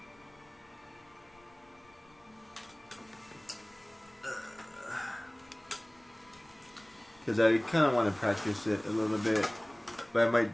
Because I kind of want to practice it a little bit, but I might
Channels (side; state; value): left; noise; rumble, 30 dB below the sound